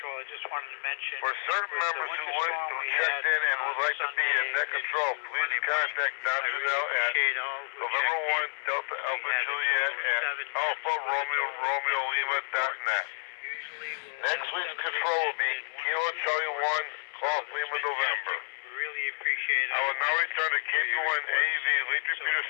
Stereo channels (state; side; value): silent; right; 58 dB below the other